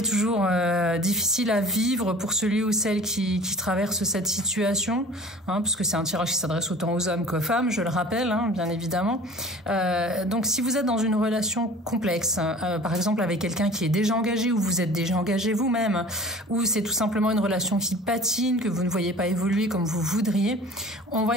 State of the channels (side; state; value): both; normal; correlation 0.44